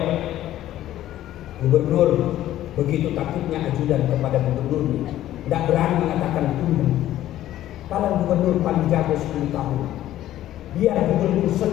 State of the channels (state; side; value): quieter; right; 13.3 dB